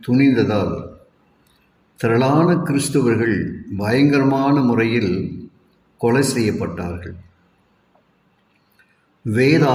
துணிந்ததால் திரளான கிறிஸ்தவர்கள் பயங்கரமான முறையில் கொலை செய்யப்பட்டார்கள்.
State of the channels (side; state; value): both; identical; correlation 1.00